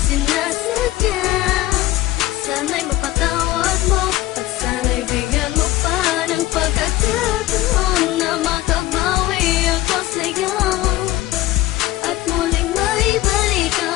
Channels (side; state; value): right; quieter; 15.9 dB